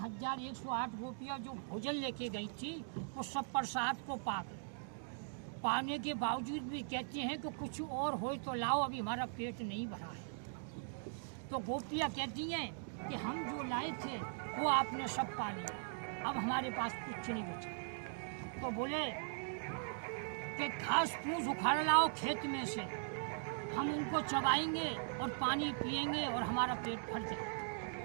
गोपियाँ जो भोजन लेके गई थी, वो सब प्रसाद को पाने के बावजूद भी कहते हैं कि कुछ और हो तो लाओ, अभी हमारा पेट नहीं भरा है। तो गोपियाँ कहती हैं कि हम जो लाए थे वो आपने सब पा लिया, अब हमारे पास कुछ नहीं बचा। तो बोले कि घास फूस उखाड़ लाओ खेत में से, हम उनको चबाएंगे और पानी पिएंगे और हमारा पेट भर जाए।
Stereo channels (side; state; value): left; silent; digital silence